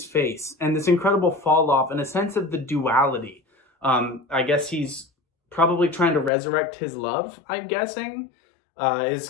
face and this incredible fall off and a sense of the duality. I guess he's probably trying to resurrect his love, I'm guessing, is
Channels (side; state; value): right; drops out; at 6.3 s